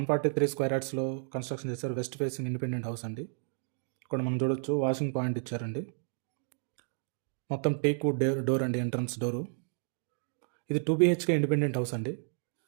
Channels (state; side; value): silent; left; 57 dB below the other